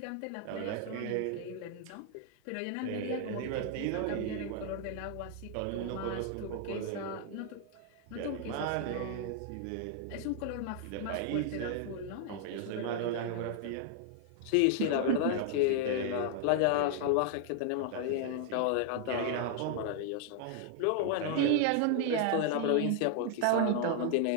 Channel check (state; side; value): different; both; correlation 0.00